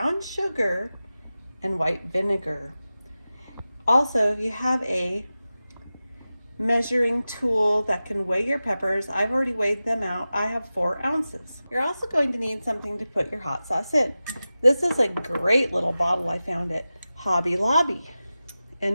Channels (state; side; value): inverted; both; correlation -0.95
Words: sugar, and white vinegar. Also, if you have a measuring tool that can weigh your peppers, I've already weighed them out. I have 4 ounces. You're also going to need something to put your hot sauce in. This is a great little bottle I found at Hobby Lobby,